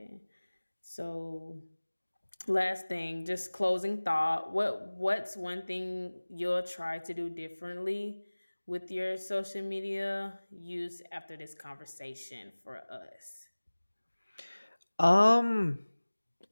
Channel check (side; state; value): both; inverted; correlation -1.00